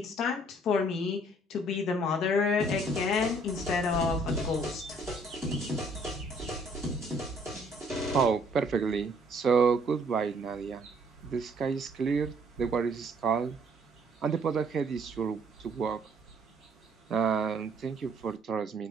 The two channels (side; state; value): both; normal; correlation 0.62